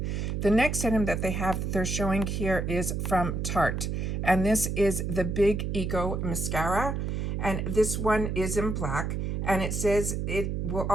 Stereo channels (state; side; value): noise; right; hum, 1 dB below the sound